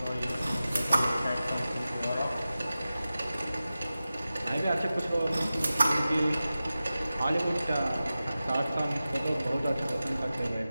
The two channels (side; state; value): both; inverted; correlation -0.95